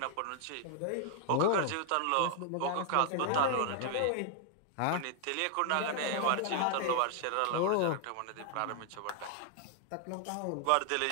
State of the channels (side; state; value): both; different; correlation 0.00